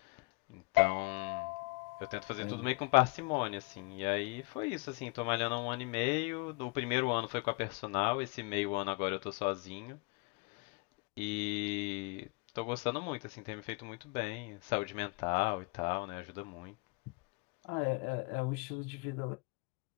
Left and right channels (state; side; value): quieter; right; 27.8 dB